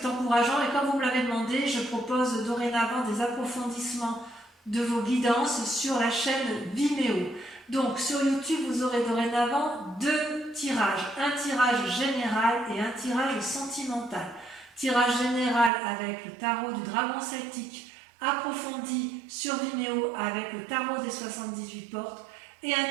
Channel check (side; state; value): left; drops out; at 15.7 s